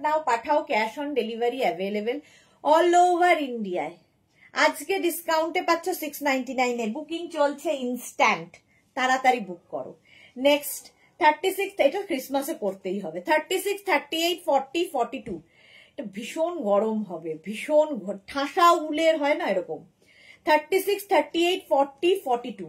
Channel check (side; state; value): both; identical; correlation 1.00